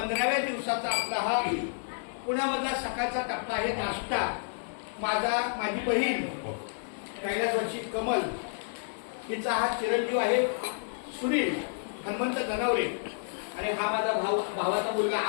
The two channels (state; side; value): silent; right; 58 dB below the other